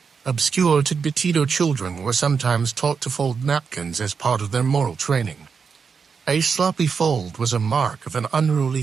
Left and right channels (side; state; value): left; quieter; 5.8 dB